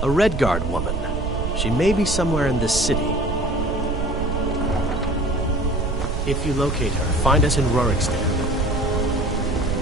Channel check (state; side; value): noise; right; rumble, 2 dB below the sound